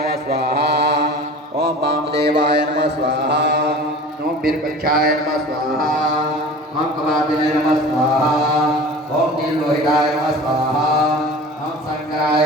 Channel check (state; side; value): normal; both; correlation 0.39